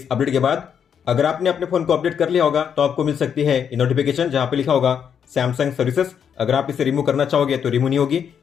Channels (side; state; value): right; quieter; 7.8 dB